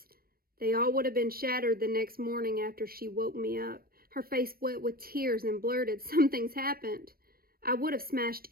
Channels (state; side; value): late; left; 0.43 ms